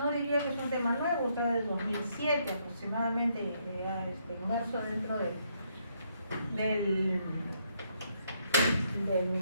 diría que es un tema nuevo, está desde 2007 aproximadamente, inmerso dentro del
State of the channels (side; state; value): both; inverted; correlation -0.73